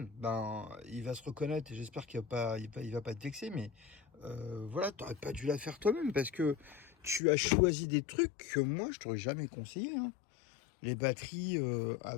Ben, il va se reconnaître et j'espère qu'il va pas te vexer. Mais voilà, tu n'aurais pas dû la faire toi-même parce que tu as choisi des trucs que moi, je t'aurais jamais conseillé, hein. Les batteries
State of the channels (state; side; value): drops out; right; at 7.2 s